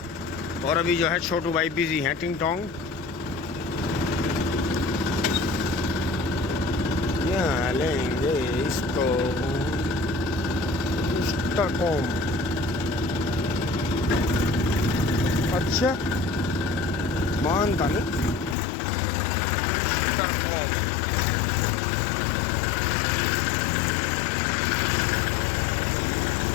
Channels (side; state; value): right; drops out; at 18.6 s